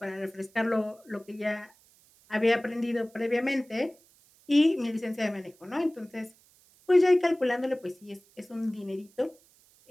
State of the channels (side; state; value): right; noise; hiss, 30 dB below the sound